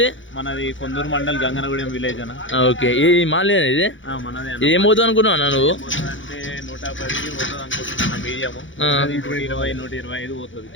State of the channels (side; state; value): right; late; 0.56 ms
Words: మనది కొందూరు మండల్ గంగనగూడెం విలేజ్ అన్న. ఓకే, ఈ మాల్ ఇది మనది. ఇది ఏం పోతుంది అనుకున్నావు నువ్వు? అంటే 110 పోతుంది అనుకుంటున్నా. మీడియం 120-125 పోతుంది.